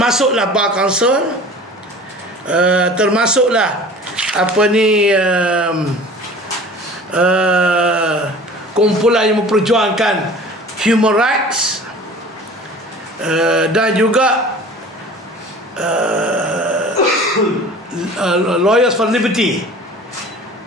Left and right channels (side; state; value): both; normal; correlation 0.43